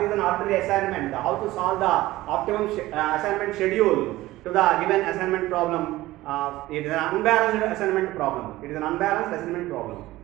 is an arbitrary assignment, how to solve the optimum assignment schedule to the given assignment problem. It is an unbalanced assignment problem. It is an unbalanced assignment problem.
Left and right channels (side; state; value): left; quieter; 17.3 dB